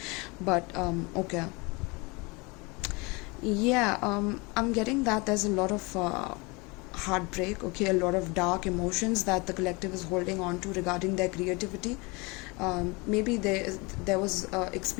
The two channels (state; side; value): quieter; right; 27.1 dB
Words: But okay. Yeah, I'm getting that there's a lot of heartbreak, okay, a lot of dark emotions that the collective is holding on to regarding their creativity. Maybe there was an